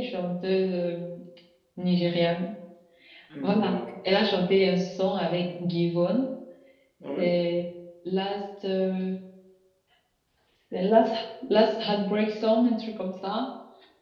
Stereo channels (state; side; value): identical; both; correlation 1.00